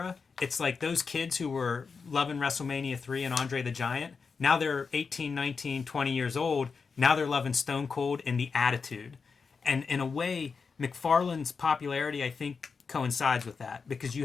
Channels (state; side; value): quieter; right; 5.2 dB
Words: it's like those kids who were loving WrestleMania 3 and Andre the Giant, now they're 18, 19, 20 years old. Now they're loving Stone Cold and the Attitude. And in a way, McFarlane's popularity, I think, coincides with that. Because